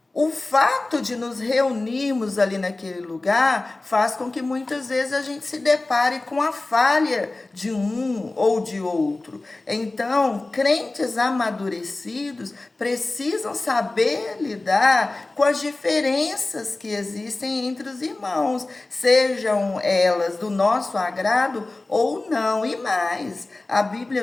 O fato de nos reunirmos ali naquele lugar faz com que muitas vezes a gente se depare com a falha de um ou de outro. Então, crentes amadurecidos precisam saber lidar com as diferenças que existem entre os irmãos, sejam elas do nosso agrado ou não. E mais, a Bíblia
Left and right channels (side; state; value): right; quieter; 3.1 dB